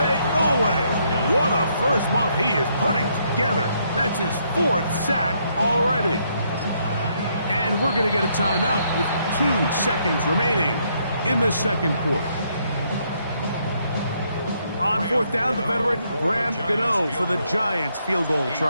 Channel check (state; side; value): inverted; both; correlation -0.73